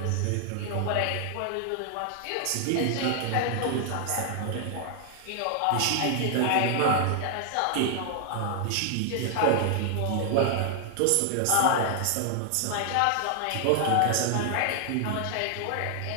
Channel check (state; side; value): different; both; correlation 0.00